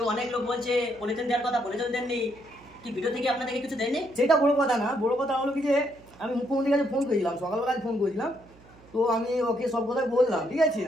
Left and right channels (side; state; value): right; noise; hum, 25 dB below the sound